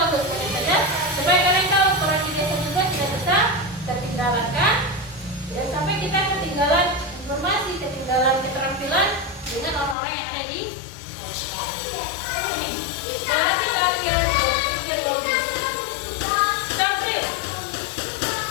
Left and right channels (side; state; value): right; drops out; at 10.0 s